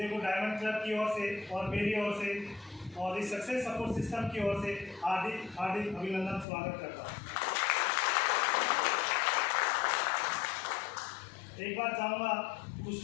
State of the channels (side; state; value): right; drops out; at 6.5 s